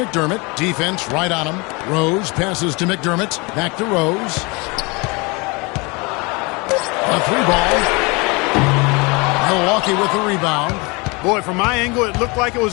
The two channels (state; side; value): quieter; right; 27.7 dB